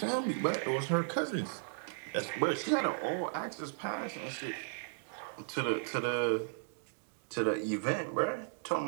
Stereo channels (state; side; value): silent; left; digital silence